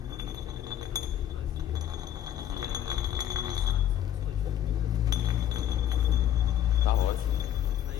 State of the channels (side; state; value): right; quieter; 11.0 dB